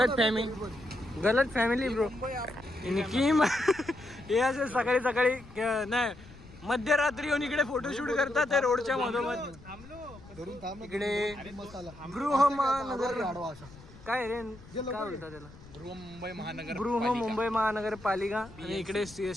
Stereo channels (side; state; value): left; noise; rumble, 20 dB below the sound